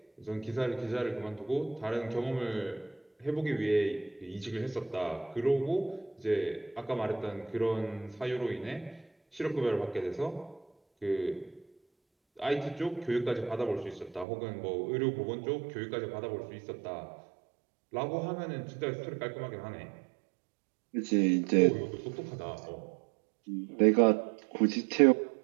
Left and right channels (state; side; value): drops out; left; at 14.2 s